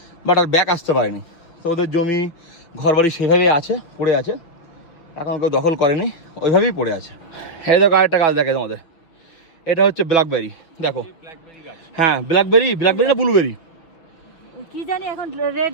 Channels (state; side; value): late; right; 6.0 ms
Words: বাট আর ব্যাক আসতে পারেনি, তো ওদের জমি ঘরবাড়ি সেভাবেই আছে, পড়ে আছে, এখন কেউ দখল করেনি, ওইভাবেই পড়ে আছে। এই দেখো আরেকটা গাছ দেখে তোমাদের, এটা হচ্ছে ব্ল্যাকবেরি, দেখো হ্যাঁ ব্ল্যাকবেরি, ব্ল্যাকবেরি না ব্লুবেরি কি জানি, এখন